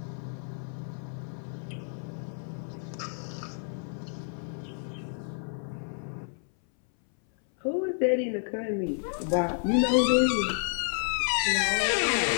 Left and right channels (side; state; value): right; silent; 58 dB below the other